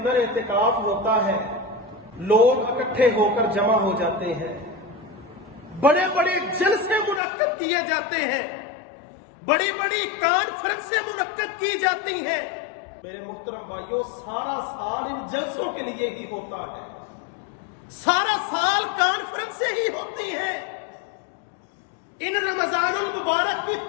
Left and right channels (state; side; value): drops out; right; at 7.2 s